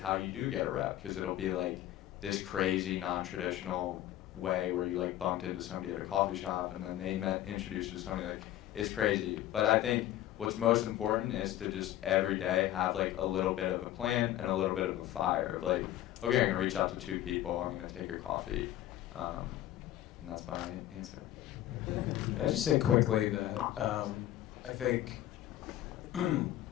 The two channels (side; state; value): right; quieter; 13.6 dB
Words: you do get a rep, because it'll be like this crazy non-traditional way where you like bumped into somebody at a coffee shop and then they introduced you to somebody. Like it's crazy. But I think what's most important is to just every day have like a little bit of a plan and a little bit of a fire of like, okay, I'm gonna reach out to 2 people, I'm gonna take a coffee, and that's my answer. Can I just say quickly that I think I'm